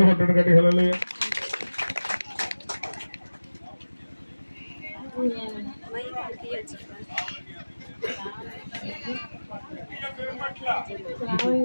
కొట్టండి గట్టి హల్లెలూయా.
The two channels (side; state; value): both; inverted; correlation -1.00